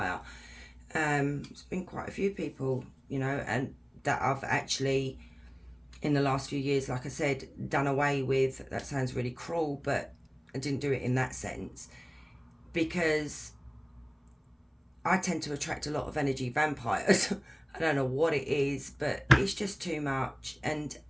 It's been quite a few people, you know, and that I've actually, in the last few years, like I said, done away with. That sounds really cruel, but I didn't do it in that sense, because I tend to attract a lot of energy vampires. I don't know what it is, but it's just too much. And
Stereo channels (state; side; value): identical; both; correlation 1.00